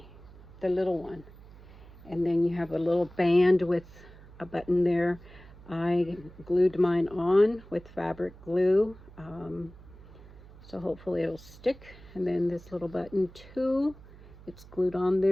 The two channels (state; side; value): noise; right; hum, 20 dB below the sound